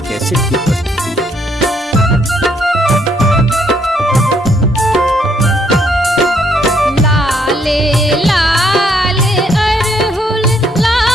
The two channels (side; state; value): both; normal; correlation 0.70